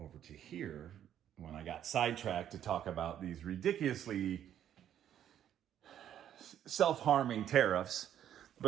to here when I got sidetracked to talk about these ridiculously self-harming tariffs.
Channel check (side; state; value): left; quieter; 10.4 dB